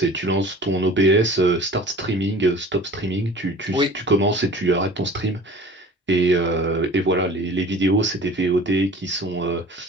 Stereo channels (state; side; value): normal; both; correlation 0.44